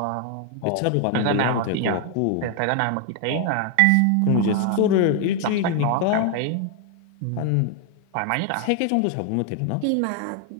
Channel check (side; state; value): both; different; correlation 0.00